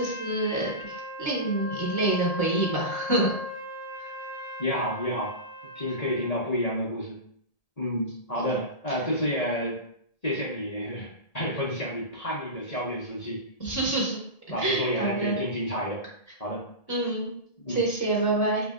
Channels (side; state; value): right; late; 1.7 ms